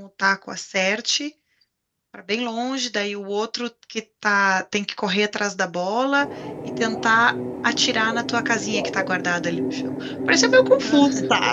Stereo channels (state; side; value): identical; both; correlation 1.00